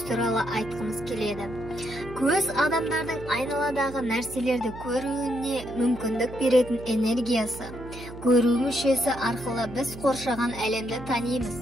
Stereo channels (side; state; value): right; noise; hum, 13 dB below the sound